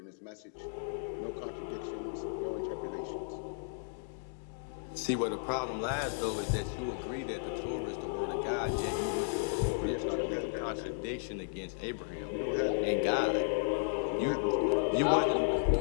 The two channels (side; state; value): right; silent; digital silence